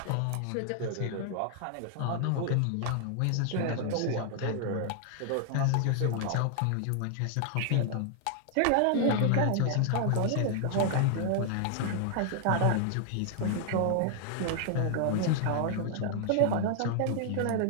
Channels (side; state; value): both; different; correlation 0.00